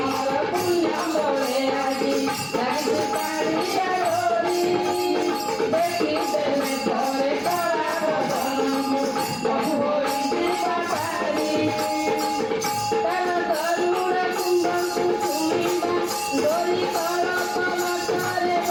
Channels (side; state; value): both; identical; correlation 1.00